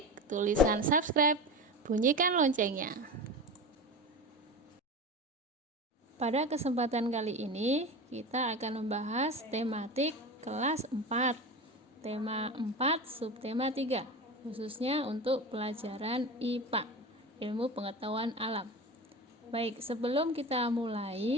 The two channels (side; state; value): both; normal; correlation 0.28